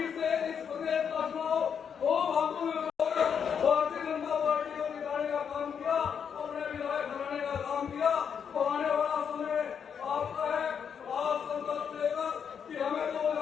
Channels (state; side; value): quieter; right; 7.3 dB